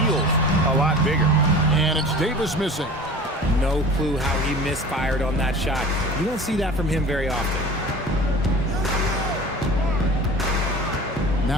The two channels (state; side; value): normal; both; correlation 0.39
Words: a lot bigger. And it's Davis missing. No clue how he misfired on that shot. You don't see that from him very often.